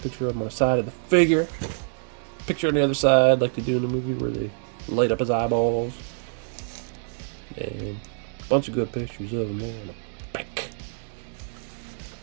of him on the side of the figure. Picture on the other side, like they do in the movie, where they light up his eyeballs. And a bunch of good pictures of him there on the back.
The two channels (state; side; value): silent; left; 61 dB below the other